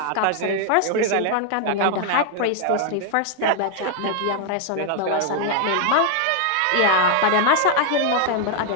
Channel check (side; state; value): both; different; correlation 0.00